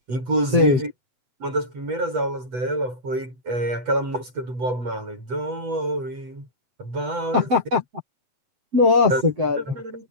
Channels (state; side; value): late; left; 8.1 ms